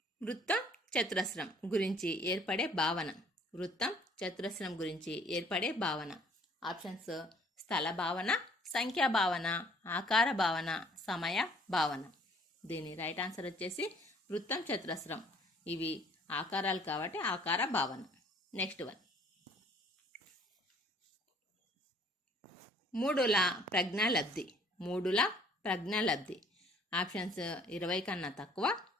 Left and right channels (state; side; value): normal; both; correlation 0.58